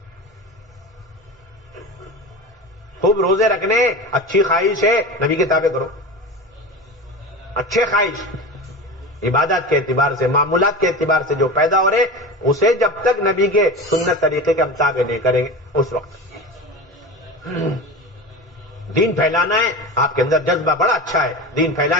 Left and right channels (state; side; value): normal; both; correlation 0.29